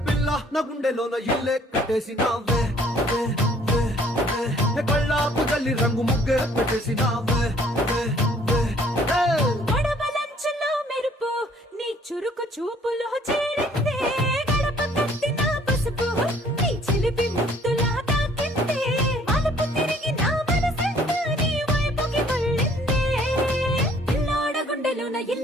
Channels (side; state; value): both; normal; correlation 0.59